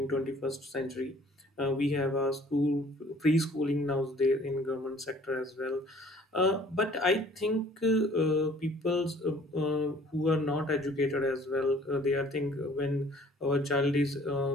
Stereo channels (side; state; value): both; normal; correlation 0.54